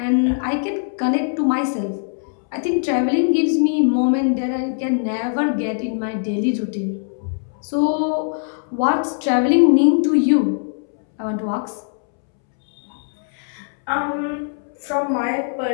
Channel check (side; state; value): right; silent; 65 dB below the other